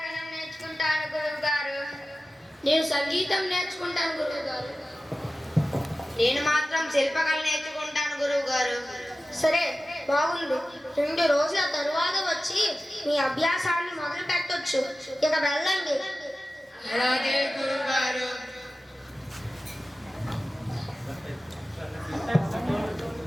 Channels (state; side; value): normal; both; correlation 0.95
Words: నేర్చుకుంటాను గురువు గారు. నేను సంగీతం నేర్చుకుంటాను గురువు గారు. నేను మాత్రం శిల్పకళ నేర్చుకుంటాను గురువు గారు. సరే, బాగుంది. 2 రోజుల తరువాత వచ్చి మీ అభ్యాసాన్ని మొదలు పెట్టొచ్చు. ఇక వెళ్ళండి. అలాగే గురువు గారు.